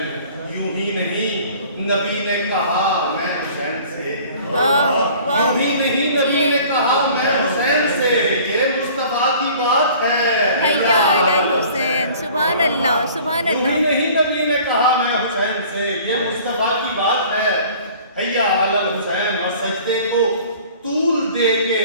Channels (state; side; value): inverted; both; correlation -0.49